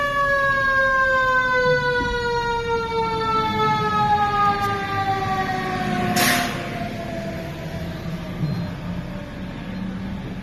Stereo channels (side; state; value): both; identical; correlation 1.00